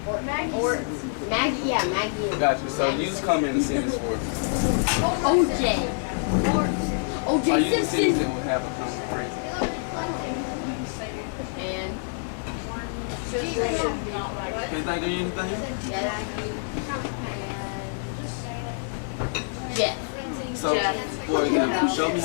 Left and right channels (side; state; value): right; silent; digital silence